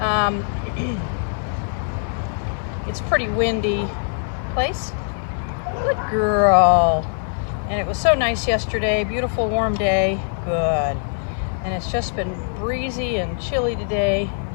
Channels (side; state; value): right; silent; digital silence